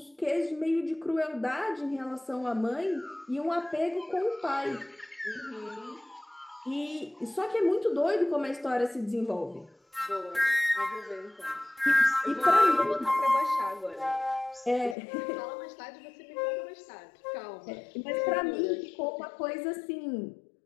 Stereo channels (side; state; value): right; drops out; at 15.0 s